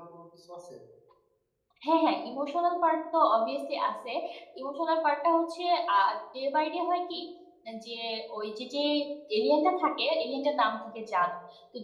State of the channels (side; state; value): both; identical; correlation 1.00